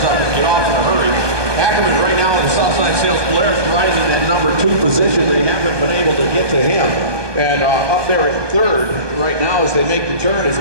up and get off in a hurry. Ackerman right now in the Southside Sales Polaris riding in that number 2 position. They haven't been able to get to him. And up there in 3rd right now as they make the turn is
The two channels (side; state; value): left; late; 1.2 ms